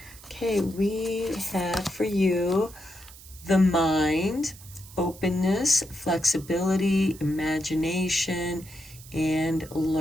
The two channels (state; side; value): noise; right; hiss, 19 dB below the sound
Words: Okay, we have for you the mind, openness, flexibility, imagination, and